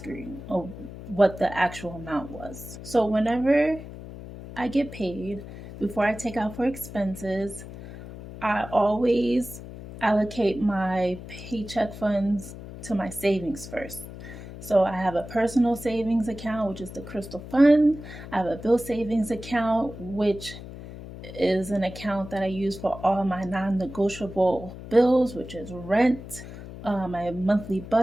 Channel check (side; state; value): left; noise; hum, 13 dB below the sound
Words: of what the actual amount was. So whenever I get paid, before I take out for expenses, I always allocate my paycheck funds to my savings first. So I have a personal savings account, which is the Crystal Fund. I have a bill savings account, which is an account that I use for all my non-negotiable bills, which is rent, my monthly